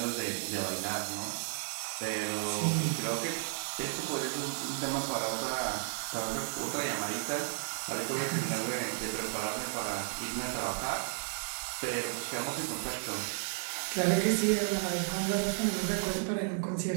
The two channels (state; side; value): silent; left; digital silence